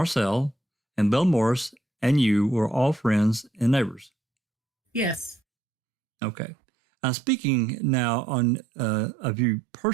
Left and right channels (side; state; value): left; drops out; at 5.4 s